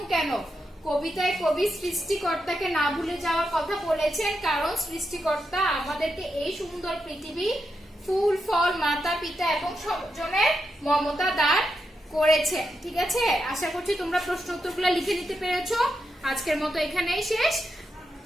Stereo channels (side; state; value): both; normal; correlation 0.85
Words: কেন, কবিতায় কবি সৃষ্টিকর্তাকে না ভুলে যাওয়ার কথা বলেছেন, কারণ সৃষ্টিকর্তা আমাদেরকে এই সুন্দর পৃথিবী, ফুল ফল, মাতা পিতা এবং স্বজনের মমতা দান করেছেন, ঠিক আছে। আশা করছি তোমরা প্রশ্ন উত্তরগুলো লিখে নিতে পেরেছো। আজকের মতো এখানেই শেষ।